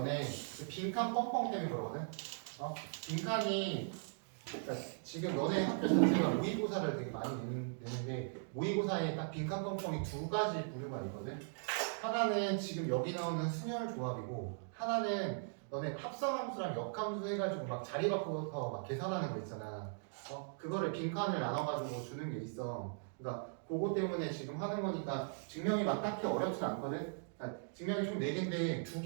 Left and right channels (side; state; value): left; silent; digital silence